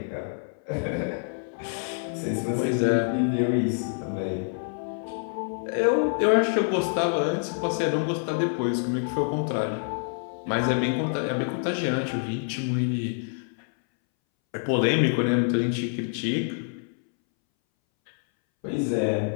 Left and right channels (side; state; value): right; silent; 60 dB below the other